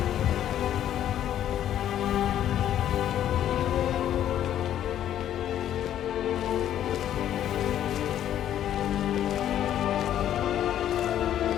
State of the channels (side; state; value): right; quieter; 11.1 dB